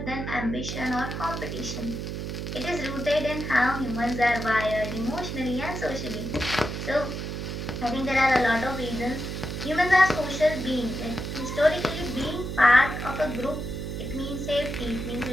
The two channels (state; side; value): noise; right; hum, 5 dB below the sound